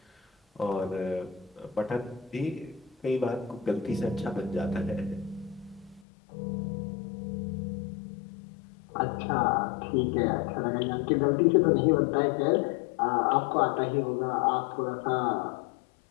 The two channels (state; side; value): drops out; right; at 6.0 s